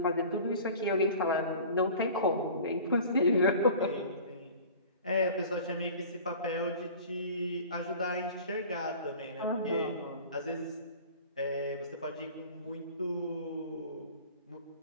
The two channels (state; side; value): inverted; both; correlation -0.42